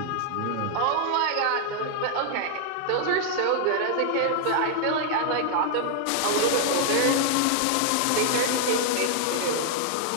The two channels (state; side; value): different; both; correlation 0.00